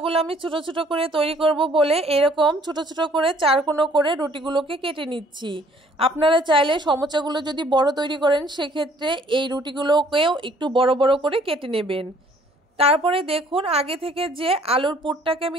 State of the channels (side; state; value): both; normal; correlation 0.59